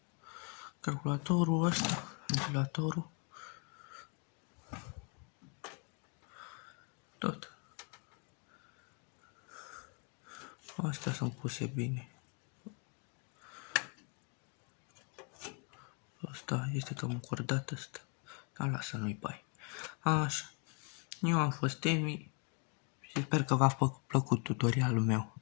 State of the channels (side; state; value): right; quieter; 36.9 dB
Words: Calculatorul ăsta, ventilatorul. Tot. Astea sunt puse bine. Asta este cam încordat ăsta. Dar lasă, nu-i bai. Așa. Eu am fost Emi și sper că v-a plăcut tutorialul meu.